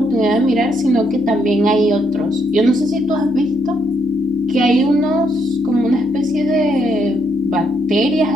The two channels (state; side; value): noise; right; hum, 21 dB below the sound